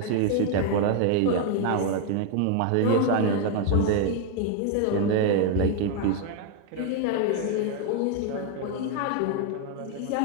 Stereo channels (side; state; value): both; different; correlation 0.01